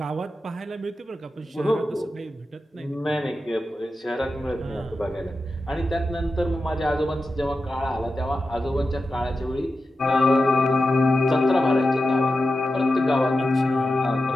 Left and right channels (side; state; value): both; normal; correlation 0.91